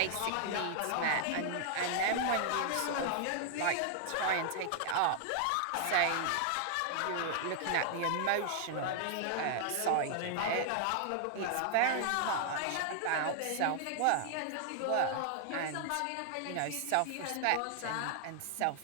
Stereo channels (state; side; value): different; both; correlation 0.00